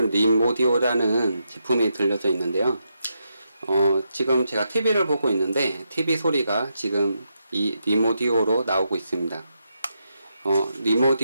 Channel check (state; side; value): inverted; both; correlation -0.83